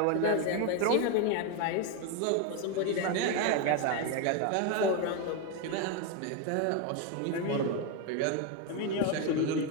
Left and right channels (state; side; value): different; both; correlation 0.02